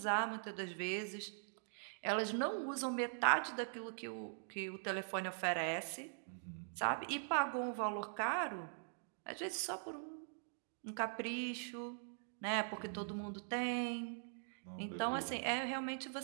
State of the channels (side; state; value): left; silent; digital silence